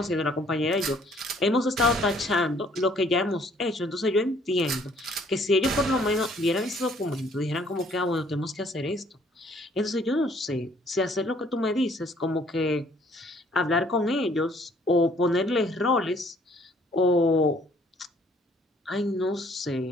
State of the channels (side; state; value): both; normal; correlation 0.61